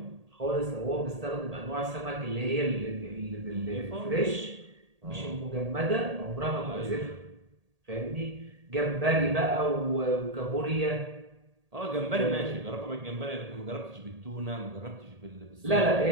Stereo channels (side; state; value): left; late; 1.8 ms